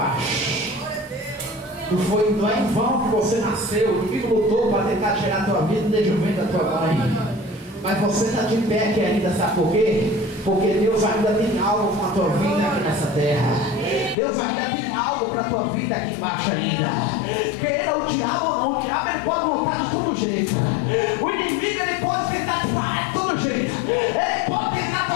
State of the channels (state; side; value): drops out; right; at 14.2 s